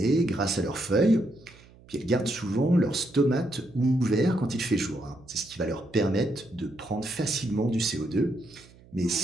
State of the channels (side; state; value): right; noise; hum, 25 dB below the sound